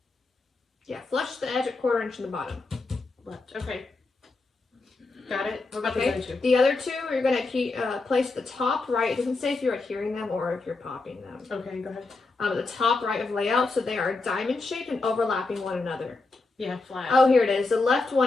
Yeah, flush to the edge at 1/4 inch from the bottom. Left. Okay. Got it. What about Okay. the other two? The other two, you're going to place the top right. It doesn't say if you're adhering them or if you're popping them. Okay, go ahead. The top right of layout, so they are diamond shaped and overlapping one another. Yeah, flat. Oh, here it is. The left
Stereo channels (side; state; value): right; quieter; 3.6 dB